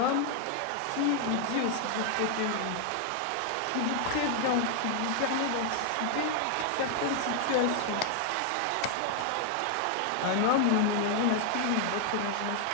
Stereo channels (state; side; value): different; both; correlation 0.00